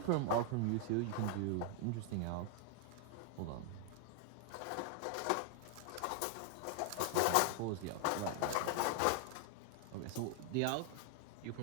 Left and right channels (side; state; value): both; different; correlation 0.00